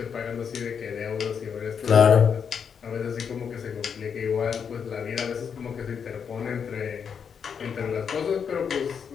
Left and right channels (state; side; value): quieter; right; 6.9 dB